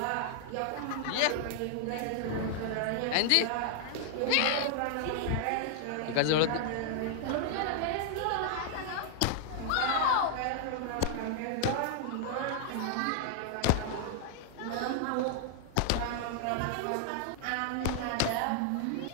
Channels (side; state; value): both; different; correlation 0.00